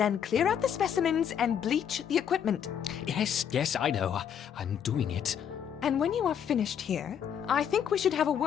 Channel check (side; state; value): right; quieter; 8.5 dB